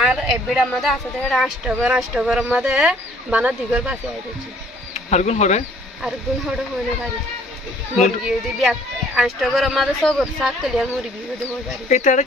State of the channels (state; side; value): normal; both; correlation 0.59